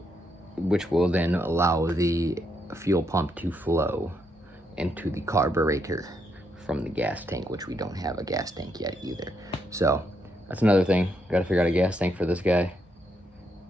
which will then allow the fuel pump to flow into the carburetor from the gas tank, which we don't have a gas tank yet either. So that's another thing. Got to figure out a gas tank for this guy,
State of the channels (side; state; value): both; normal; correlation 0.78